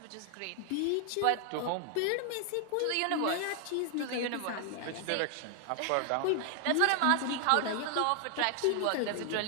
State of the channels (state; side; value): different; both; correlation 0.00